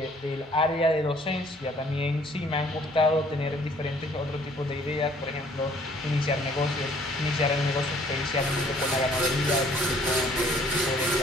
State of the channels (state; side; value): normal; both; correlation 0.59